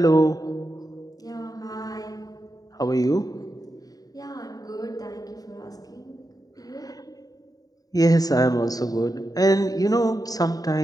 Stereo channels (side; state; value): right; late; 0.18 ms